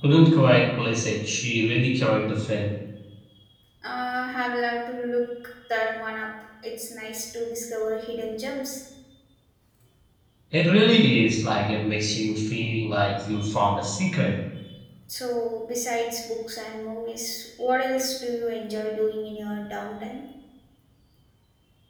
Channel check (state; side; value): identical; both; correlation 1.00